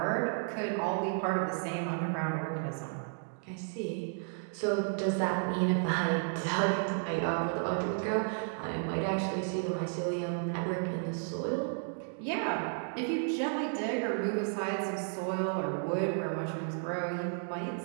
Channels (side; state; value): left; silent; 56 dB below the other